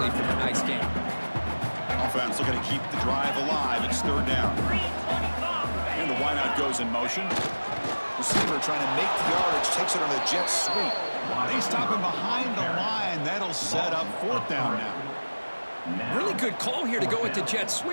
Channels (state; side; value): inverted; both; correlation -1.00